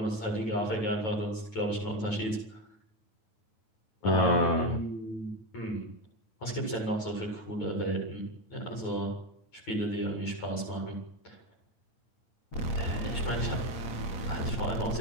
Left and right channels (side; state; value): right; late; 9.2 ms